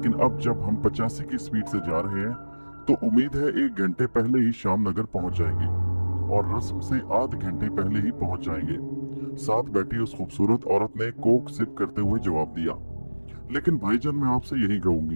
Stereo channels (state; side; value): inverted; both; correlation -1.00